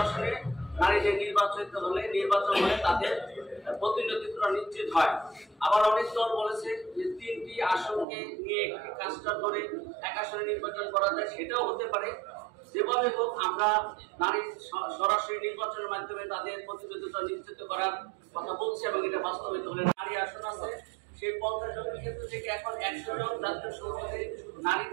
আসনে নারীদের নির্বাচন হলে তাদের প্রতিনিধিত্ব নিশ্চিত হয়। আবার অনেক দল বলেছে যে 3টি আসনকে নিয়ে একটি কাজটা করে এক আসনে নির্বাচন করা যায়, সেটাও হতে পারে। যেভাবে হোক আমরা নারী সরাসরি নির্বাচনের মাধ্যমে তাদের প্রতিনিধিত্ব নিশ্চিত করার কথা বলছি এবং এটা বাস্তবায়িত হলে নারী আসন আছে সেই 50 জনের ক্ষেত্র থেকে এখন 100 জন জাতীয় সংসদে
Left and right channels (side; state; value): left; drops out; at 8.1 s